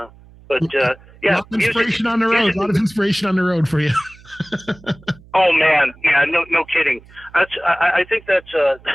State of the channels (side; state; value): right; noise; hum, 24 dB below the sound